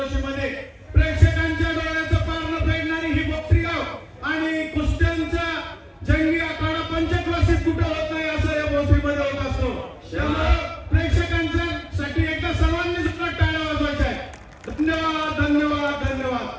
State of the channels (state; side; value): identical; both; correlation 1.00